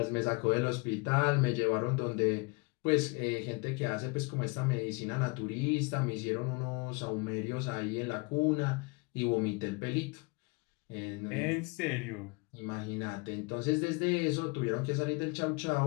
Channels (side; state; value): right; quieter; 29.3 dB